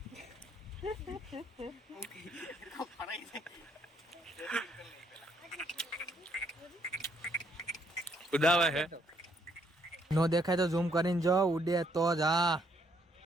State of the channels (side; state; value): both; normal; correlation 0.70